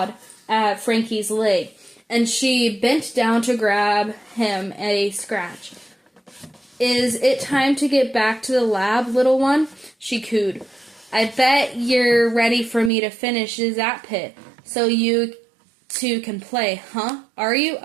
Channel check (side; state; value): left; drops out; at 12.9 s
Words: at Frankie's leg, and she bent down to grab him a scratch. Is it time to get back to the lab, little one? She cooed. I bet you're ready for me to finish that pit, so you two can play, huh? Are you?